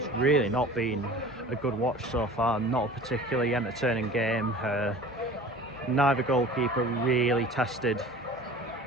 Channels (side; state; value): both; normal; correlation 0.42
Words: really not been a good watch so far. Not a particularly entertaining game. Neither goalkeeper really tested